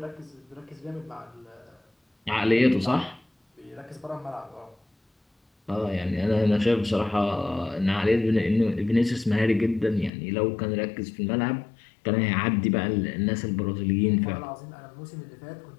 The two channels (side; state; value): right; drops out; at 10.1 s